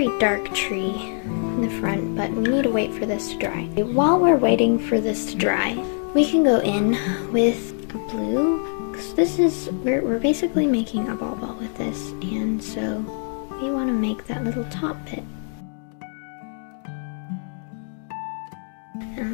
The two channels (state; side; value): silent; right; 56 dB below the other